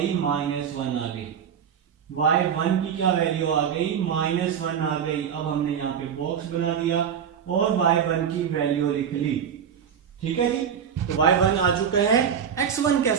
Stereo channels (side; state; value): left; quieter; 7.9 dB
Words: -1 आ गई, y1 की क्या वैल्यू आ गई, -1 आ गई। अब हमने यहाँ पे बॉक्स बना दिया और y1 की वैल्यू लिख ली, ठीक है जी। तो y1 आ चुका है। x1